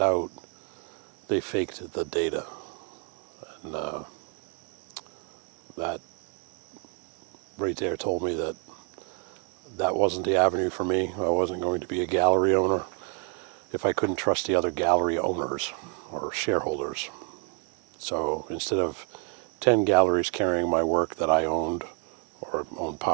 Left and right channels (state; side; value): quieter; left; 33.2 dB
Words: out they faked the data. And that right there told me that that wasn't the avenue for me. I wasn't going to be a gallery owner if I couldn't trust the other gallery owners or shareholders. So instead of 10 galleries carrying my work that I owned or owned